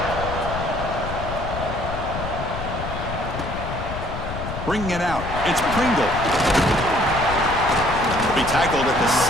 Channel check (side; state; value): left; noise; rumble, 7 dB below the sound